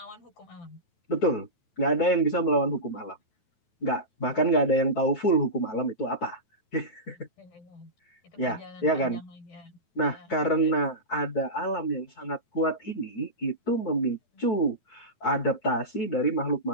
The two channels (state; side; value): late; right; 9.3 ms